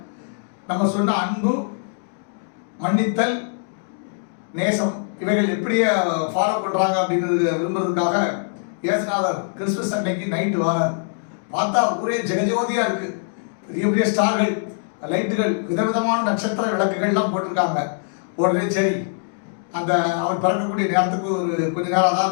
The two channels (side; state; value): right; silent; digital silence